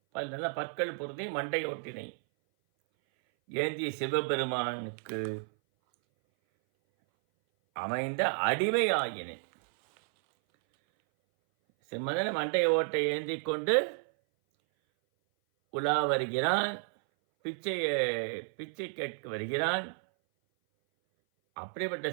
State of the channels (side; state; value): left; silent; 57 dB below the other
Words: நல்லா பற்கள் பொருந்தி மண்டை ஓட்டினை ஏந்திய சிவபெருமானுக்கு அமைந்த அடிமை ஆயினை. சிம்மதன மண்டை ஓட்டை ஏந்தி கொண்டு உலா வருகிறான், பிச்சை கேட்க வருகிறான். அப்படிப்பட்ட